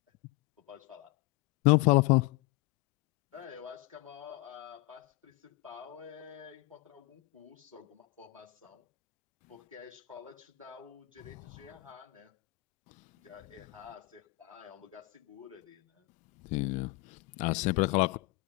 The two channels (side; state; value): right; quieter; 21.3 dB